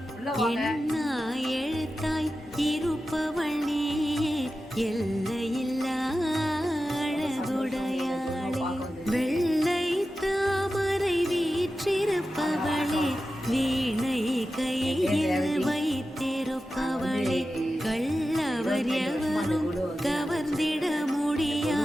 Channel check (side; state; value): both; normal; correlation 0.93